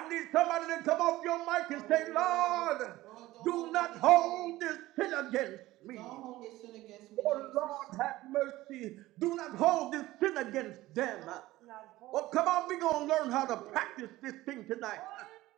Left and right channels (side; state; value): left; quieter; 17.2 dB